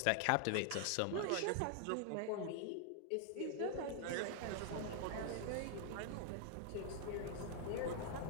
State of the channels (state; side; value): different; both; correlation 0.00